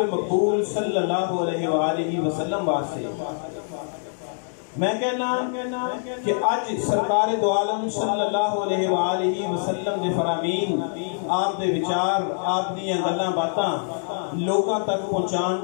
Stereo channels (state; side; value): silent; right; digital silence